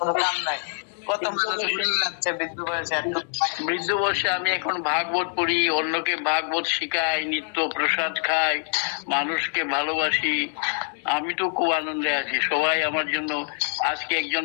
কাম নাই। কত মানুষ যাচ্ছে বৃদ্ধ বয়সে। বৃদ্ধ বয়সে আমি এখন ভাগবত পড়ি, অন্যকে ভাগবত শিখাই, নিত্য প্রসাদ খাই, মানুষকে ভালোবাসি। আমি তো খুব আনন্দে আছি। সবাই আমার জন্য আজকে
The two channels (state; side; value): silent; right; 62 dB below the other